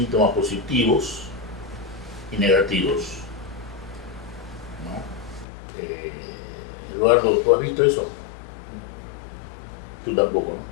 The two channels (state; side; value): drops out; right; at 5.5 s